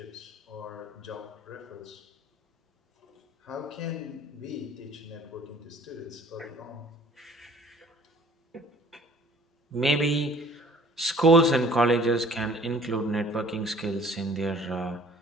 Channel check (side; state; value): both; normal; correlation 0.53